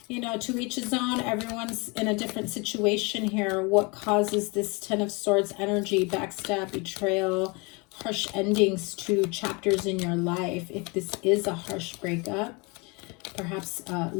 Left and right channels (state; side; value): quieter; right; 28.9 dB